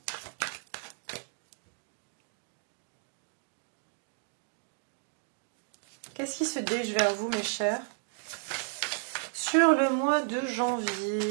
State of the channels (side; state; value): left; silent; digital silence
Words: Qu'est-ce qui se dirige vers vous, mes chers? Sur le mois de